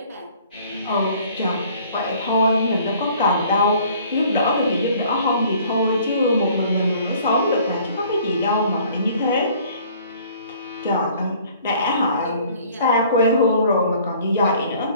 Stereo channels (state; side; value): inverted; both; correlation -0.55